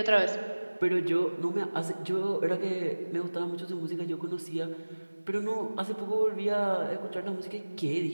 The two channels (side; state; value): both; inverted; correlation -1.00